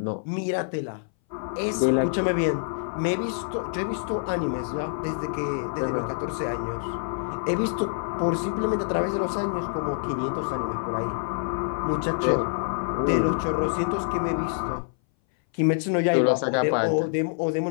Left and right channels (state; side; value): silent; right; 59 dB below the other